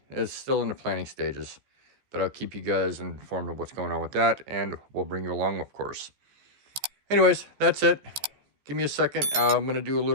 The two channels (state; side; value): late; left; 14 ms